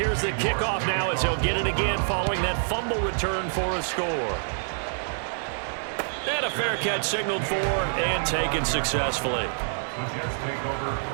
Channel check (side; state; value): left; silent; 60 dB below the other